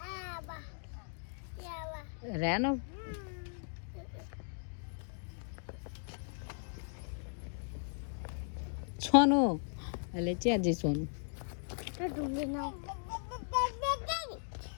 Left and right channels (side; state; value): right; silent; digital silence